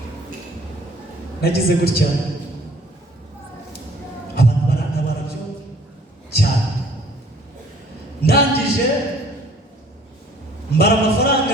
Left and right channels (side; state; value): both; normal; correlation 0.56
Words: nagize gutya, abantu barantabara byo cyane. Ndangije mbara